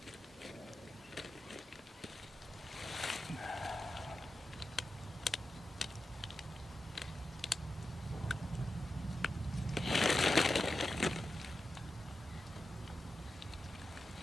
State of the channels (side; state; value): both; normal; correlation 0.91